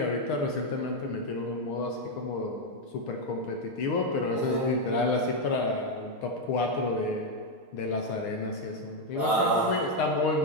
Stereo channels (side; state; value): right; late; 6.5 ms